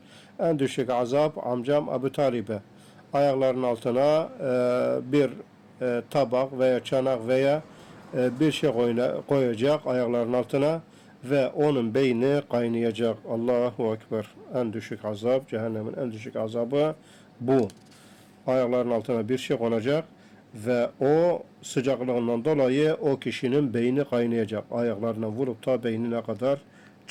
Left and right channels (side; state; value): both; identical; correlation 1.00